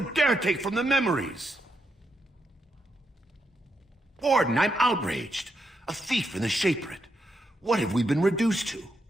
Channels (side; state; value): both; normal; correlation 0.82